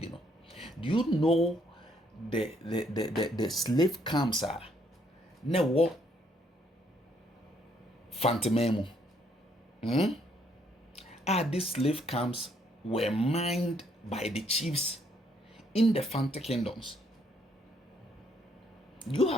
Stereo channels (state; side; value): normal; both; correlation 0.69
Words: Do you know the slave camps are na what Fante memo? These slave camps were mined by the chiefs in the Fante kingdoms. Do you